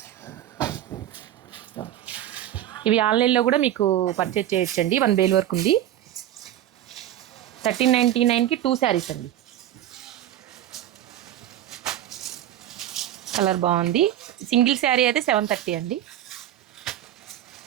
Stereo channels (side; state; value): left; quieter; 12.3 dB